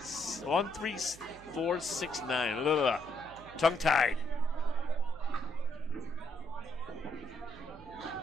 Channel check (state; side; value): noise; right; hum, 20 dB below the sound